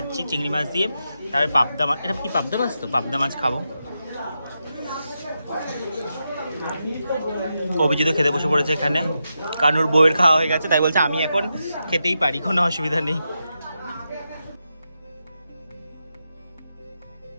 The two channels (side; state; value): both; inverted; correlation -0.87